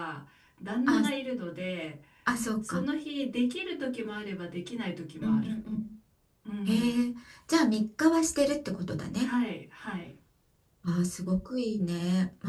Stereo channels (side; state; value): both; identical; correlation 1.00